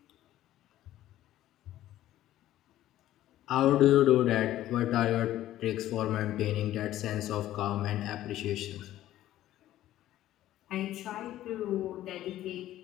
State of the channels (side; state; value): right; quieter; 13.7 dB